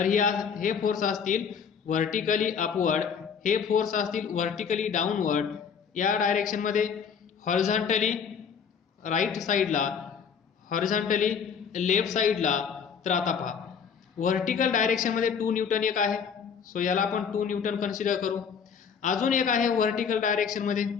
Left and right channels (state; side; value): quieter; right; 6.8 dB